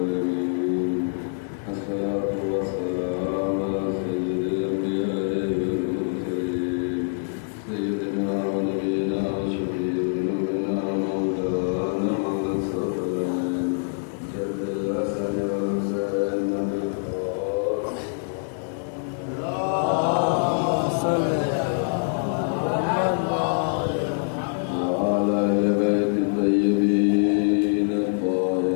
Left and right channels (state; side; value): silent; right; 60 dB below the other